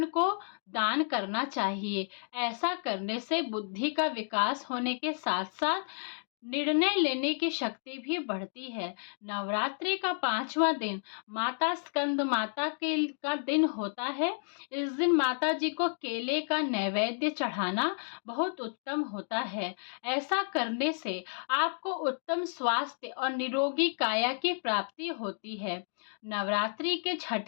को दान करना चाहिए। ऐसा करने से बुद्धि का विकास होने के साथ साथ निर्णय लेने की शक्ति भी बढ़ती है। नवरात्रि का 5वां दिन माता स्कंद माता का दिन होता है। इस दिन माता जी को केले का नैवेद्य चढ़ाना बहुत उत्तम होता है। ऐसा करने से आपको उत्तम स्वास्थ्य और निरोगी काया की प्राप्ति होती है। नवरात्रि के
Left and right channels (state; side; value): silent; right; digital silence